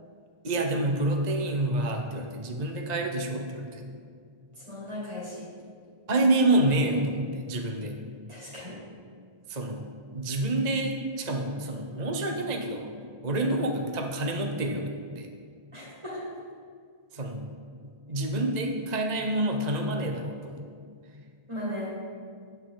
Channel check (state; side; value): late; left; 1.9 ms